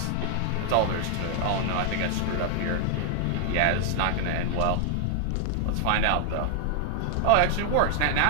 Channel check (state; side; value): different; both; correlation 0.00